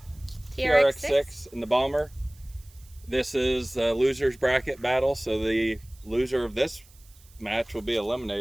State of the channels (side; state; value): right; noise; hiss, 27 dB below the sound